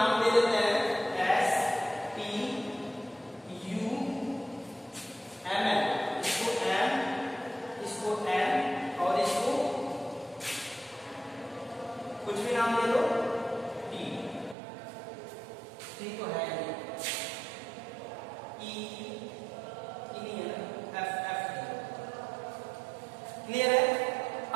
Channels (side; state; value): left; drops out; at 14.6 s